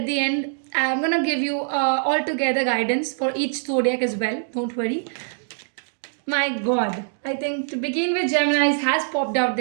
the end I'm gonna give you altogether guidance for each zodiac as well. Don't worry. My God, I think to begin with, Gemini's has popped out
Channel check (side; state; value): left; silent; digital silence